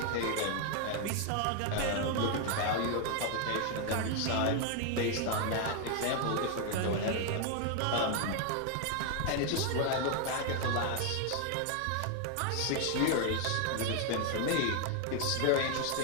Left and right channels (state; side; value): different; both; correlation 0.00